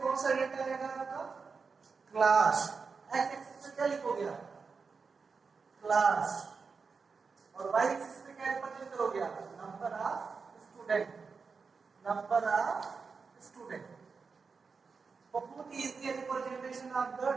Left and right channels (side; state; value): left; quieter; 5.0 dB